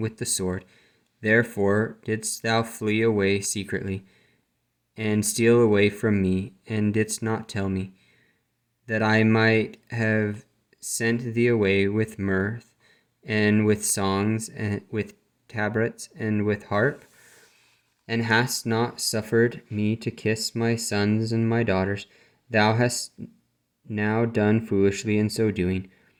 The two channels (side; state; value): both; identical; correlation 1.00